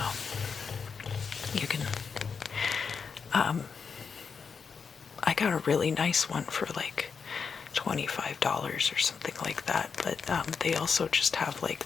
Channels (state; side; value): quieter; right; 5.8 dB